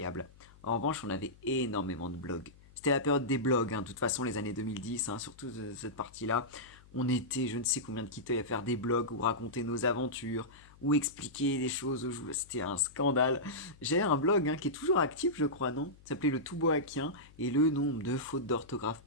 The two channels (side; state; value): left; noise; hum, 24 dB below the sound